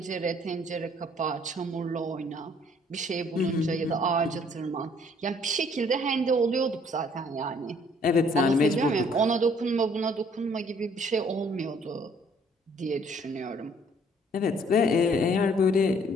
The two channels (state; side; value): normal; both; correlation 0.61